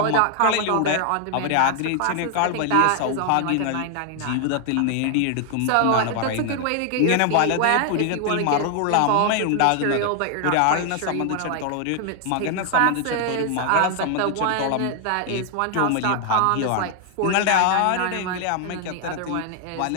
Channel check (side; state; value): both; different; correlation 0.00